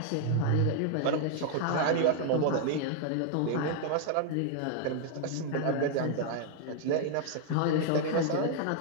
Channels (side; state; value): both; different; correlation 0.00